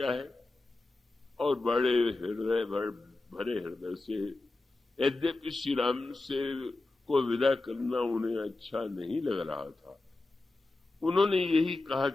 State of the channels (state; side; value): quieter; right; 3.1 dB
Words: है, और बड़े हृदय, भरे हृदय से, यद्यपि श्री राम से को विदा करना उन्हें अच्छा नहीं लग रहा था, उन्होंने यही कहा